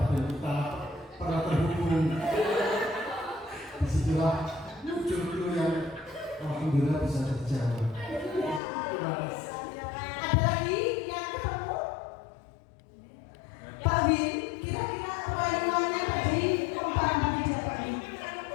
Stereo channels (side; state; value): right; drops out; at 8.6 s